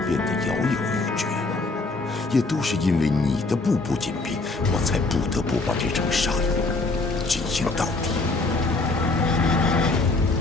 变得摇摇欲坠。也都是因为你的步步紧逼，我才不得不把这场杀戮进行到底。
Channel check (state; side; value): quieter; right; 3.4 dB